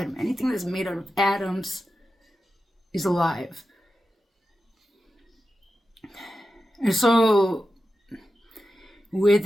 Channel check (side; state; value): both; normal; correlation 0.91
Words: anything that's made out of atoms is alive. And so